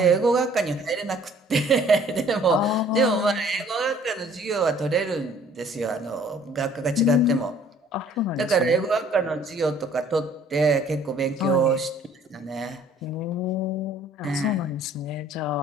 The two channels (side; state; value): both; normal; correlation 0.56